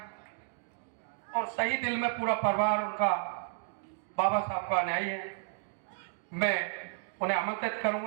और सही दिल में पूरा परिवार उनका बाबा साहब का अनुयायी है। मैं उन्हें आमंत्रित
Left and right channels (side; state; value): left; silent; digital silence